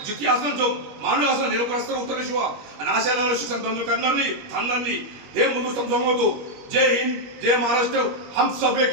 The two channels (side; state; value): left; late; 21 ms